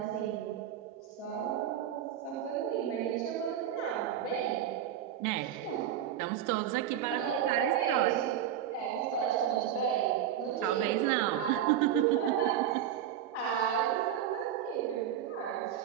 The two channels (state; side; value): quieter; left; 10.2 dB